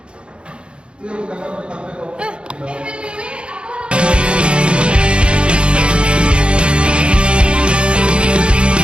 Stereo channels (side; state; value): left; late; 0.056 ms